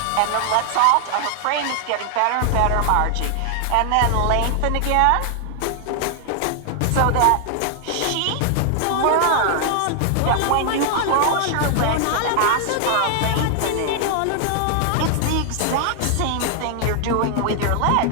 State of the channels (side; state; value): both; different; correlation 0.00